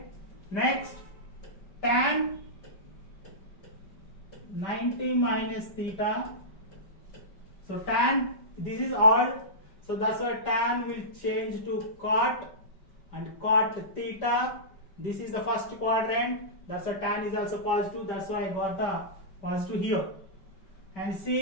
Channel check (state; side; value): late; right; 5.2 ms